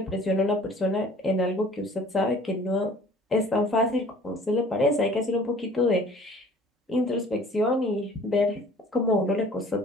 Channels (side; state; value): both; normal; correlation 0.50